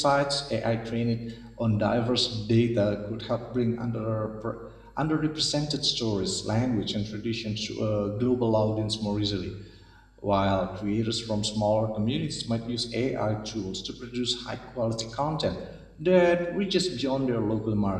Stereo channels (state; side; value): identical; both; correlation 1.00